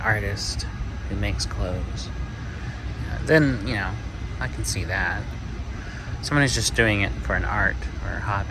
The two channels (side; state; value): both; identical; correlation 1.00